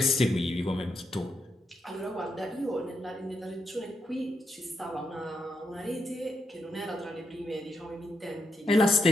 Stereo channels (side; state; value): both; normal; correlation 0.82